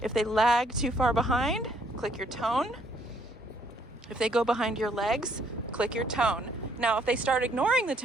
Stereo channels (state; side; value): normal; both; correlation 0.67